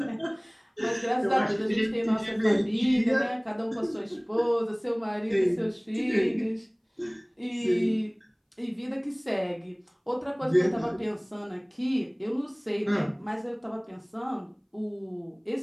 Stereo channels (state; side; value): identical; both; correlation 1.00